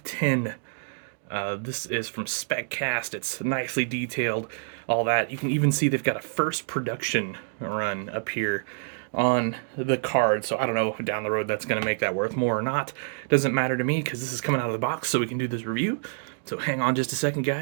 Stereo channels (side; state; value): left; silent; digital silence